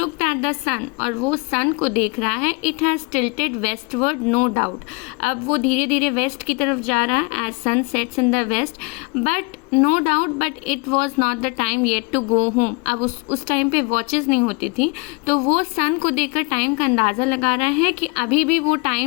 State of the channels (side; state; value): right; quieter; 29.1 dB